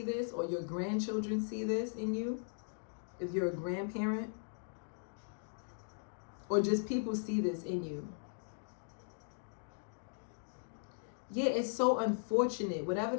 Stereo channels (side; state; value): right; silent; digital silence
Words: this, or your grandchildren see this in you, if you're a grandparent. or just people see this in you. Yeah, it's so unfortunate. Whatever